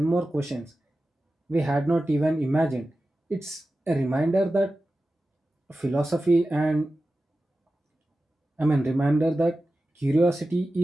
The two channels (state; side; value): normal; both; correlation 0.94